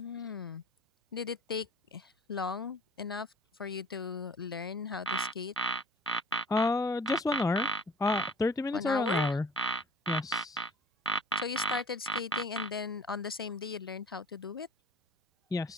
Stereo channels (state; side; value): normal; both; correlation 0.48